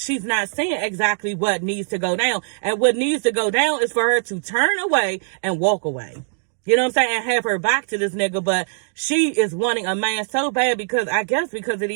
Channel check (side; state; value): left; silent; digital silence